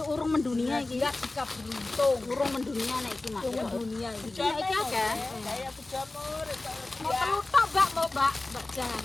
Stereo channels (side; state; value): right; quieter; 3.0 dB